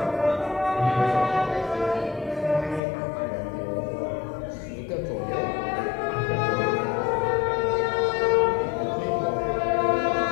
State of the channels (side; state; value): right; drops out; at 2.8 s